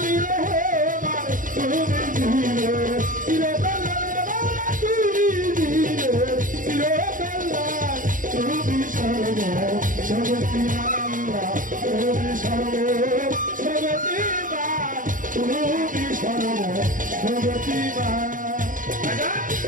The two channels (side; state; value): left; late; 0.39 ms